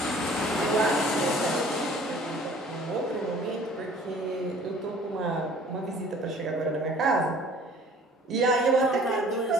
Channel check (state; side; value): normal; both; correlation 0.51